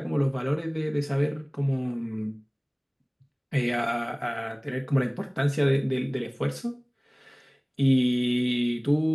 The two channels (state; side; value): identical; both; correlation 1.00